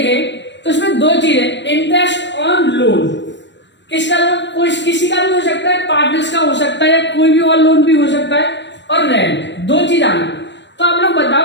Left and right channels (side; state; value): right; late; 0.52 ms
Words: तो इसमें दो चीजें, इंटरेस्ट ऑन लोन, किसका लोन? कोई किसी का भी हो सकता है, पार्टनर्स का हो सकता है, या कोई भी और लोन भी हो सकता है, और रेंट, दो चीज आनी। तो आप लोग